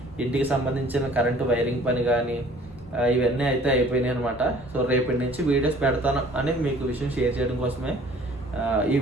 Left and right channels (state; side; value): normal; both; correlation 0.53